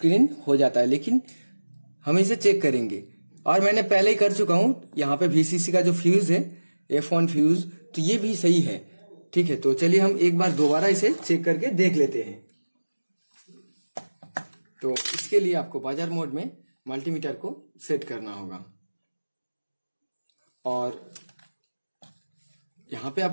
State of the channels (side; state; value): both; inverted; correlation -1.00